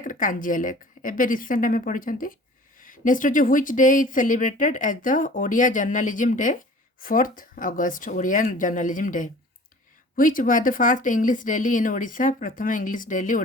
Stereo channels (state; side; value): normal; both; correlation 0.45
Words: Kanjia lake एबे रिसेंट आम पढ़ी नेक्स्ट होची which day is celebrated as the Odia journalism day 4th August Odia journalism day which was the first English daily in Odisha प्रथम इंग्लिश डेली